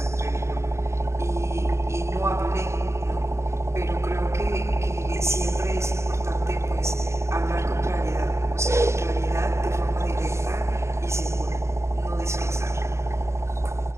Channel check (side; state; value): left; late; 0.13 ms